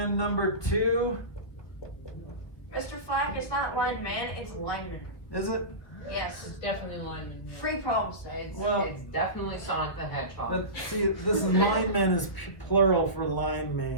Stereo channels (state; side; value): late; right; 1.3 ms